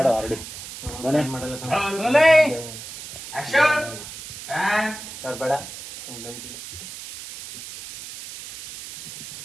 ಆಲ್ರೆಡಿ ಸರ್ ಬೇಡ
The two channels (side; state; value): right; noise; hiss, 12 dB below the sound